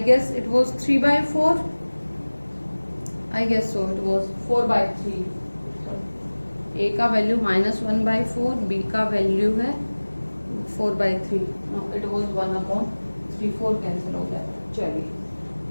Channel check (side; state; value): both; inverted; correlation -1.00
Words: guess it was 3/4, I guess so it was 4/3। A का वैल्यू -1/4, बी का वैल्यू है 4/3। इट वॉज 1/3, 4 कैंसिल हो गया। चलिए,